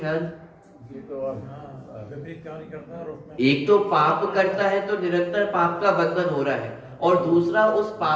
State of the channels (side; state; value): both; identical; correlation 1.00